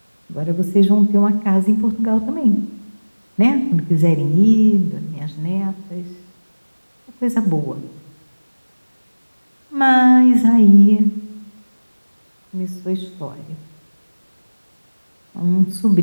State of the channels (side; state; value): both; inverted; correlation -1.00